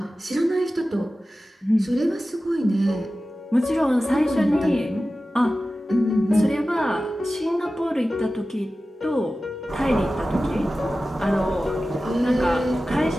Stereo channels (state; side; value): normal; both; correlation 0.95